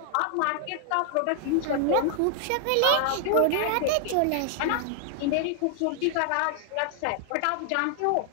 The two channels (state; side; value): different; both; correlation 0.00